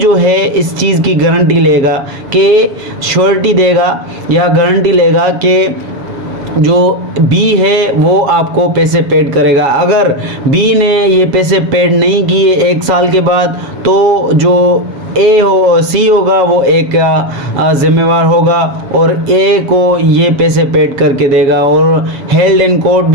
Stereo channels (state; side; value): late; left; 7.4 ms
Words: है इस चीज़ की गारंटी लेगा, कि श्योरिटी देगा या गारंटी लेगा कि जो बी है वो आपको पैसे पेड करेगा। अगर बी ने ये पैसे पेड नहीं किए 1 साल के बाद, तो जो ए हो सी होगा वो एक जिम्मेवार होगा और ए को ये पैसे पेड करके देगा, और हेल्ड इन कोर्ट